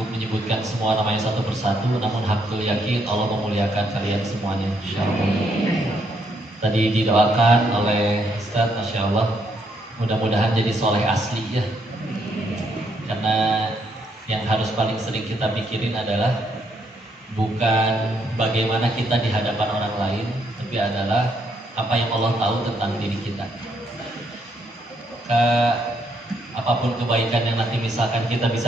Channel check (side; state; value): both; normal; correlation 0.74